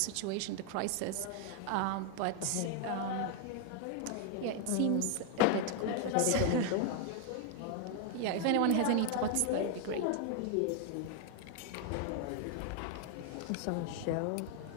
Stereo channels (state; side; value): different; both; correlation 0.00